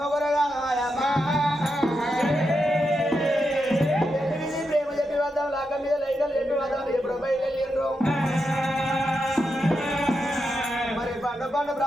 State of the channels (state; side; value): normal; both; correlation 0.85